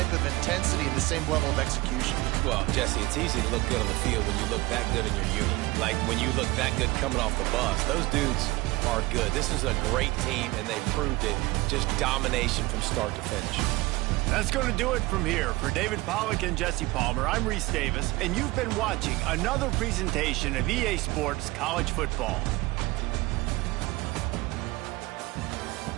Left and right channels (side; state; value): left; quieter; 21.4 dB